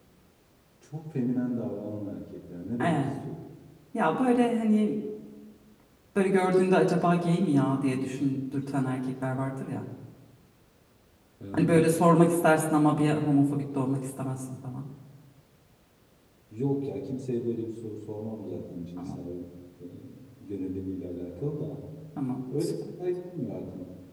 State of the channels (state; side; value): identical; both; correlation 1.00